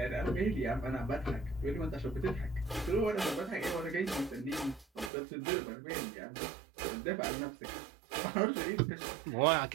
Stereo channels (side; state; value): left; drops out; at 5.1 s